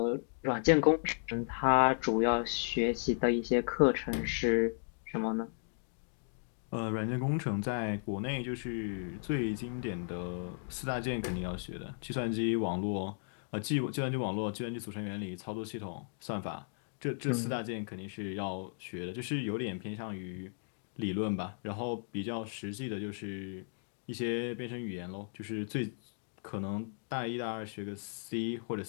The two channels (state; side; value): silent; right; digital silence